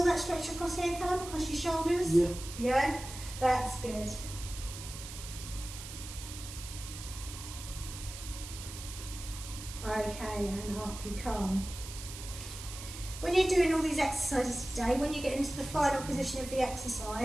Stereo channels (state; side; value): noise; right; hiss, 11 dB below the sound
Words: that stretch across here, Callum, across your shoulders? Yeah. Yeah? That's good. Okay, and up you come. When you're doing all these exercises today, when you get into the final position of the